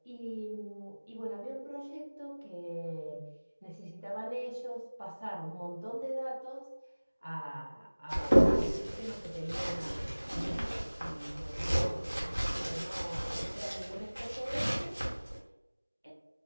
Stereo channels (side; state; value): both; inverted; correlation -1.00